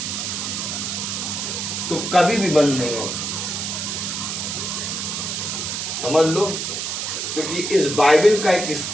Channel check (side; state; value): right; noise; hiss, 3 dB below the sound